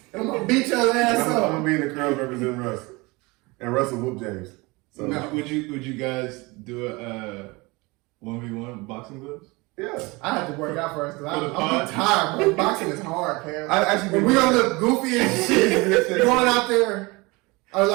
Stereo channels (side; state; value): left; quieter; 24.6 dB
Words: and I'm gonna beat your ass I'm up. gonna be in the crowd representing Russ, and Russ will whoop James. So No. Would you guys do a 1v1 boxing gloves? yeah, I had to work out first because For the I'm pod? tired, bro. Boxing is hard, Cam. I actually. And we gonna look goofy and shit going out there. I was